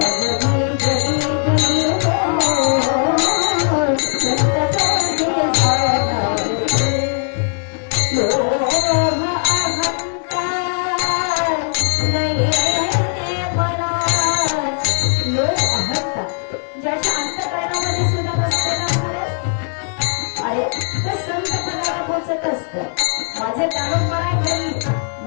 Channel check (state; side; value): silent; right; 60 dB below the other